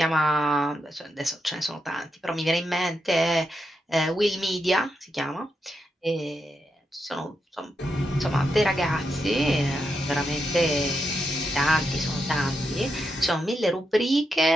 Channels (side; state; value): both; normal; correlation 0.85